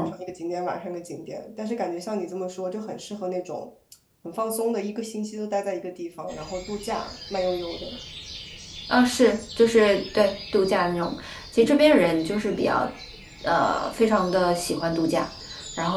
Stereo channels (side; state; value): both; identical; correlation 1.00